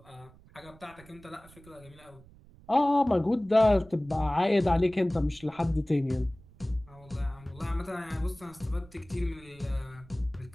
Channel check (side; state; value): right; noise; rumble, 24 dB below the sound